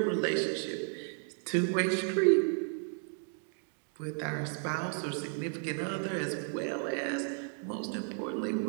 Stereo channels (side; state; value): left; silent; 55 dB below the other